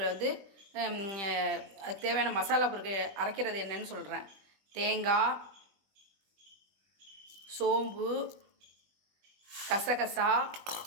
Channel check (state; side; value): late; left; 20 ms